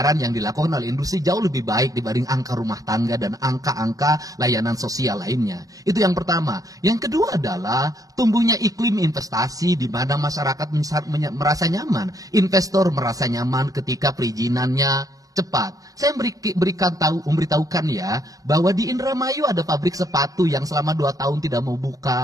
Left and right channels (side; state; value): left; late; 0.17 ms